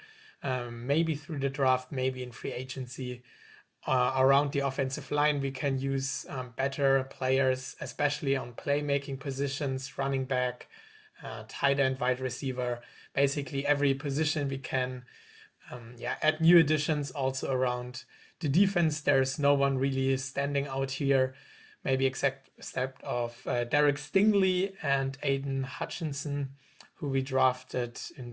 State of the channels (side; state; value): both; identical; correlation 1.00